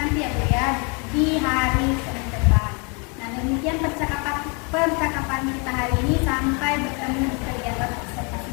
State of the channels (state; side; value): quieter; right; 33.5 dB